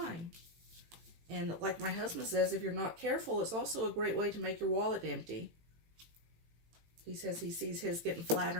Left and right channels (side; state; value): left; late; 18 ms